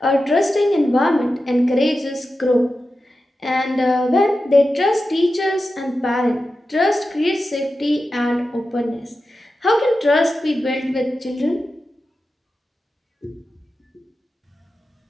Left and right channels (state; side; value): normal; both; correlation 0.92